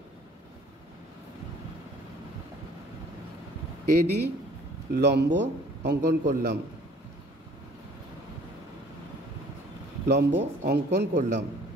AD লম্ব অঙ্কন করলাম,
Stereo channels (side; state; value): both; normal; correlation 0.54